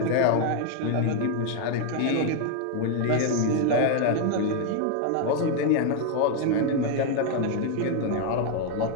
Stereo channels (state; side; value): different; both; correlation 0.00